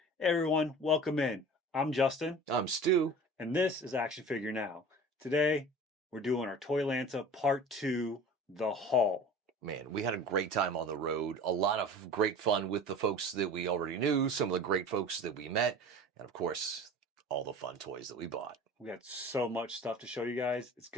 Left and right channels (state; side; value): normal; both; correlation 0.39